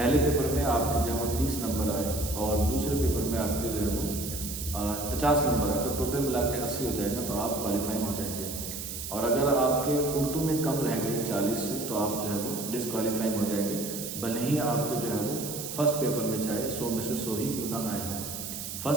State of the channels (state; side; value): noise; right; hiss, 7 dB below the sound